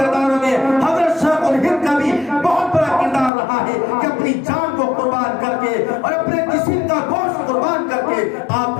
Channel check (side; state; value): right; drops out; at 3.3 s